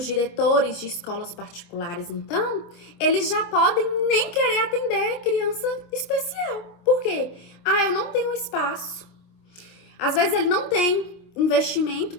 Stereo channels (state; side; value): late; right; 25 ms